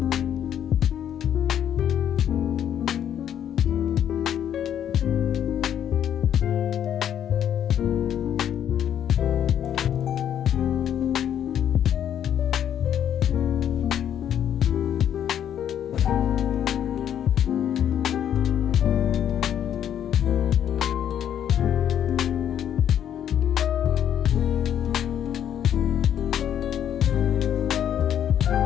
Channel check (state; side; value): quieter; right; 9.8 dB